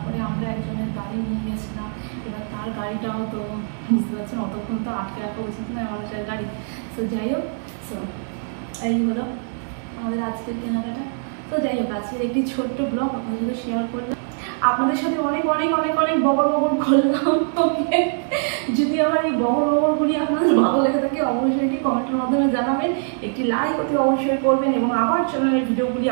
আমরা একজনের গাড়ি নিয়ে গেছিলাম, এবার তার গাড়িটাও তো বুঝতে পারছেন অতক্ষণ তো আটকে রাখা উচিত নয় মানুষের গাড়ি। তো যাই হোক, সো এই হলো আমাদের আজকের কেনাকাটা। তো যাই হোক, আজকের একটি ছোট্ট ব্লগ আপনাদের সাথে শেয়ার করলাম, আপনাদের সাথে অনেক অনেক অনেক অনেক বগর করলাম। ওকে, যদি আমার এই বগরগুলি আপনাদের ভালো লেগে থাকে অবশ্যই এটি কমেন্টের মাধ্যমে জানাবেন, একটি লাইক অতি অবশ্যই করবেন, এবং আমার চ্যানেলের ভিডিওগুলি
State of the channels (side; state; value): left; silent; 64 dB below the other